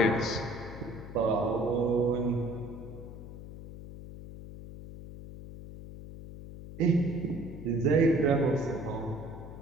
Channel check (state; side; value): noise; left; hum, 12 dB below the sound